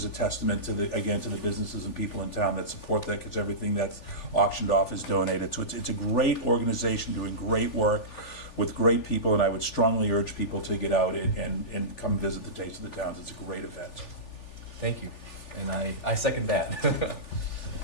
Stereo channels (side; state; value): right; late; 3.4 ms